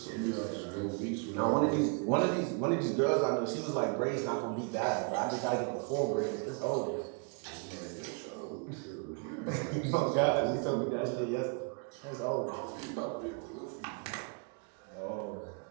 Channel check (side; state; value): left; quieter; 36.3 dB